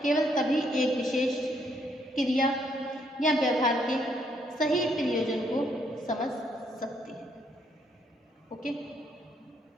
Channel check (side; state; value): both; normal; correlation 0.71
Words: केवल तभी एक विशेष क्रिया या व्यवहार के सही प्रयोजन को समझ सकते हैं. ओके,